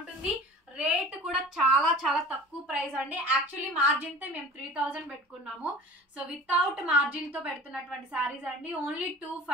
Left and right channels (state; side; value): normal; both; correlation 0.42